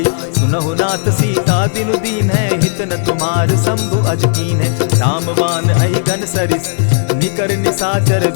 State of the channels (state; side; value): silent; right; digital silence